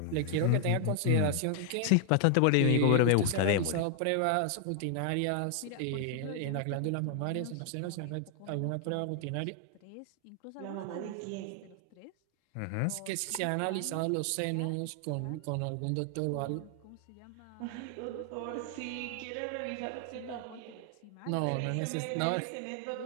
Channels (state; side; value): different; both; correlation 0.00